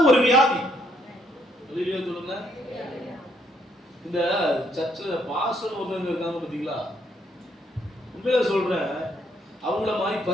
ஒரு வியாதி. சொல்லுங்க. இந்த சர்ச்சில் பாஸ்டர் ஒருத்தவங்க இருக்காங்க பாத்தீங்களா, உண்மையில சொல்றேன், அவங்கள மாதிரி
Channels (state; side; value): normal; both; correlation 0.70